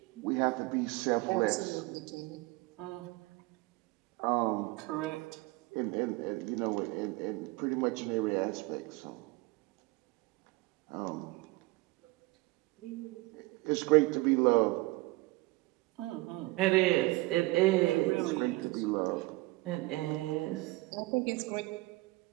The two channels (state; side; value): quieter; left; 21.7 dB